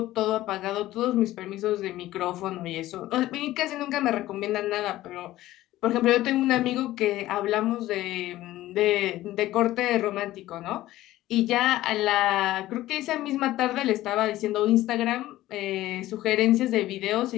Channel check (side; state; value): right; quieter; 15.5 dB